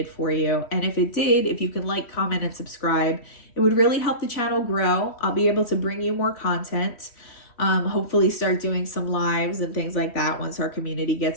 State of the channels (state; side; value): late; right; 3.1 ms